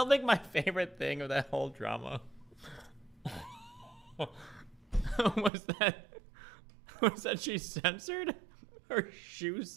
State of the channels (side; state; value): left; drops out; at 5.5 s